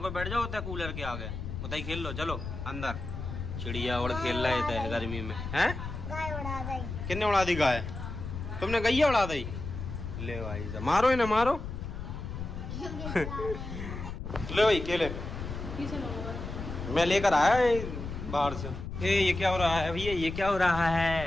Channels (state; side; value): noise; left; rumble, 7 dB below the sound